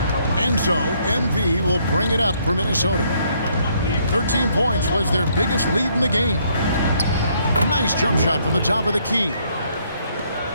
And so MV will bring it up for Minnesota. 13 points was their biggest lead in the game. Nice jump shot from the top of the key.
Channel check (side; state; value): both; inverted; correlation -0.69